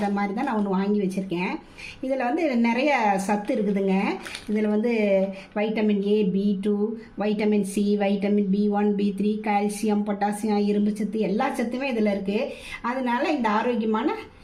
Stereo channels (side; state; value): both; identical; correlation 1.00